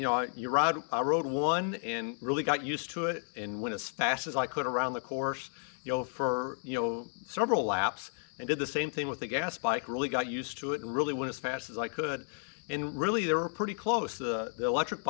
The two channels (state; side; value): silent; right; 56 dB below the other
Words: rode one and really got used to it and went as fast as I could around the course, for, several laps, and did the same thing with the gas bike, really got used to it and really went as fast as I could. And really, they were pretty close. The electric